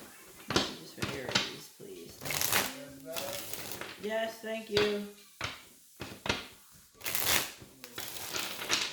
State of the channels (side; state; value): both; identical; correlation 1.00